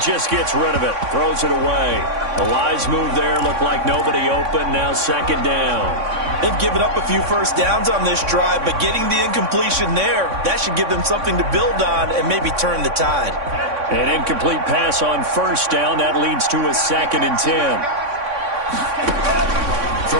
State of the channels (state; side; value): late; left; 3.6 ms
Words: just gets rid of it. Throws it away. The wise move there. Looked like nobody open. Now 2nd down. They've given up a few first downs on this drive, but getting the incompletion there, that should give them something to build on and maybe turn the tide. An incomplete pass on 1st down. That leads to a 2nd and 10.